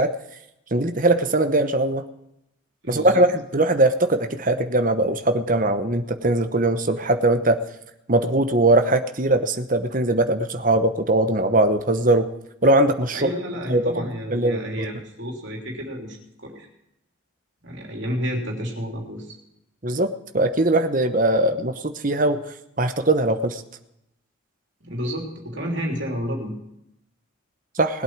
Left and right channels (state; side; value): normal; both; correlation 0.12